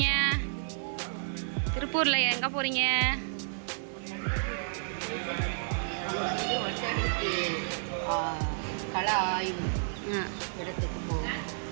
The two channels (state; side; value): silent; left; digital silence